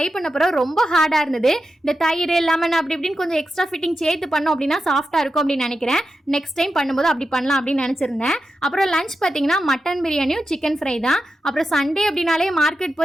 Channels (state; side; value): normal; both; correlation 0.90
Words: பண்ண பிறகு ரொம்ப ஹார்டாக இருந்தது. இந்த தயிர் லெமன் அப்படி இப்படின்னு கொஞ்சம் எக்ஸ்ட்ரா ஃபிட்டிங் சேர்த்து பண்ணோம் அப்படின்னா சாஃப்டாக இருக்கும் அப்படின்னு நினைக்கிறேன். நெக்ஸ்ட் டைம் பண்ணும்போது அப்படி பண்ணலாம் அப்படின்னு நினச்சிருந்தேன். அப்புறம் லஞ்ச் பார்த்தீங்கன்னா மட்டன் பிரியாணியும் சிக்கன் ஃப்ரை தான். அப்புறம் சண்டே அப்படின்னாலே மார்க்கெட்